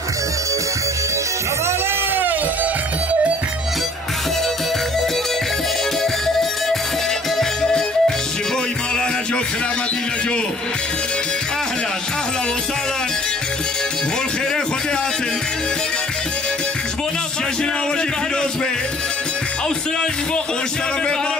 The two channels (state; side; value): normal; both; correlation 0.55